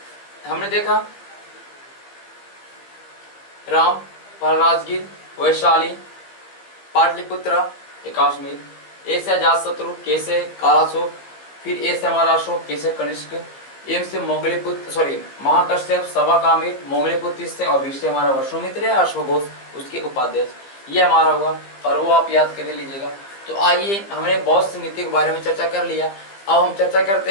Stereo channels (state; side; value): late; right; 15 ms